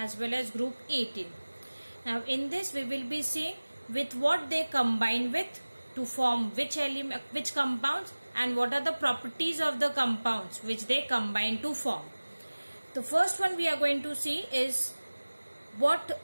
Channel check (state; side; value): inverted; both; correlation -1.00